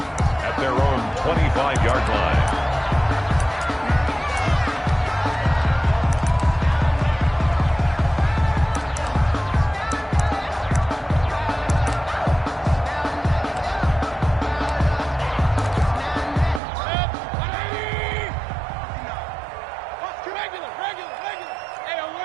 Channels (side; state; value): left; drops out; at 16.6 s